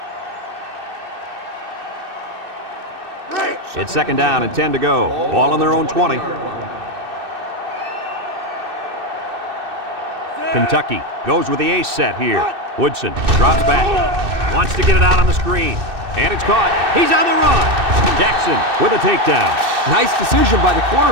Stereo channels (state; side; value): late; left; 2.6 ms